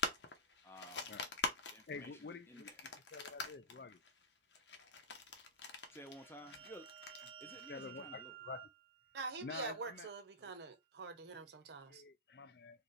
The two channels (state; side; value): normal; both; correlation -0.13